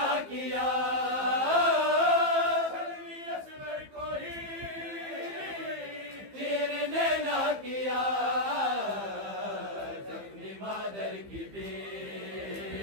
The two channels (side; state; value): left; late; 15 ms